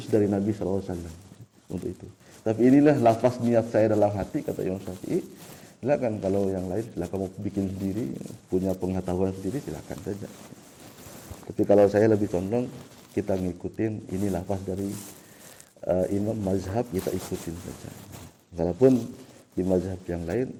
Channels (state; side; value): identical; both; correlation 1.00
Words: dari Nabi SAW untuk itu. Tapi inilah lafaz niat saya dalam hati kata Imam Syafi'i. Silakan kalau yang lain silakan mau bikin sendiri, punya pengetahuan sendiri silakan saja. Tapi kalau saya lebih condong kita ngikutin ini lafaz dari imam mazhab, kita ikutin saja. Walaupun di mazhab yang lain